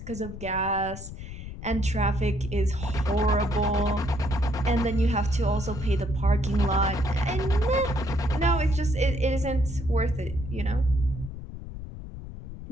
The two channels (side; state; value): left; noise; rumble, 10 dB below the sound